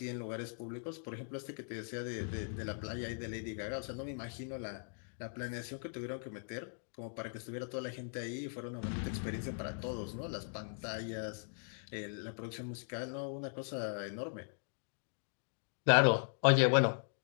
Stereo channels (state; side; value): silent; right; digital silence